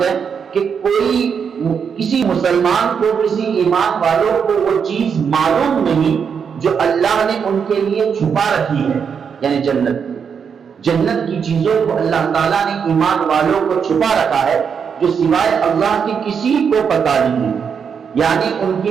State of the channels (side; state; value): left; quieter; 6.7 dB